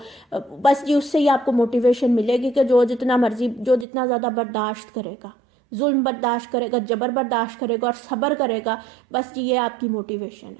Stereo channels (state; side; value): drops out; left; at 3.9 s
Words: بس جی اس سے ہی آپ کو موٹیویشن ملے گی کہ جو جتنا مرضی جو جتنا زیادہ برداشت کرے گا, ظلم برداشت کرے گا, جبر برداشت کرے گا اور صبر کرے گا, بس جی یہ آپ کی موٹیویشن